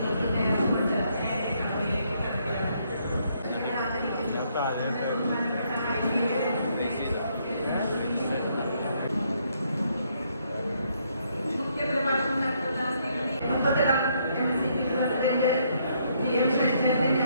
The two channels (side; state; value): both; inverted; correlation -0.72